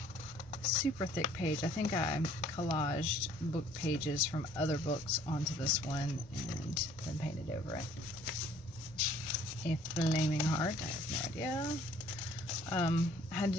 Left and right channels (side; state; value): both; normal; correlation 0.57